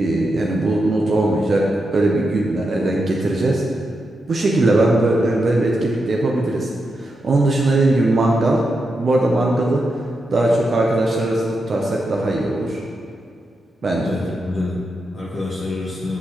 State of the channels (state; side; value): normal; both; correlation 0.86